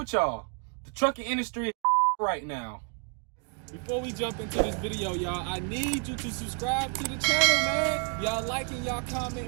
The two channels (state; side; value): quieter; left; 38.7 dB